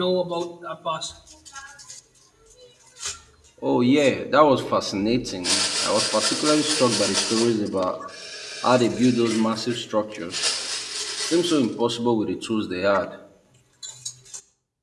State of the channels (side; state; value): both; identical; correlation 1.00